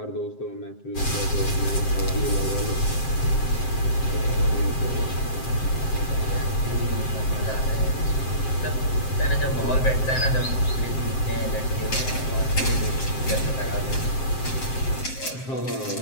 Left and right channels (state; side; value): late; right; 7.6 ms